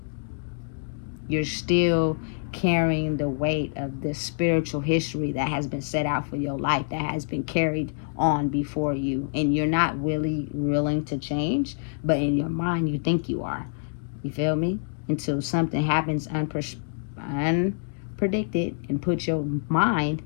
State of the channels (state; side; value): silent; right; digital silence